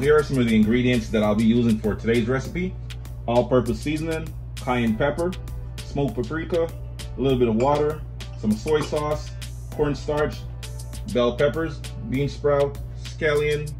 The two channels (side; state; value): both; identical; correlation 1.00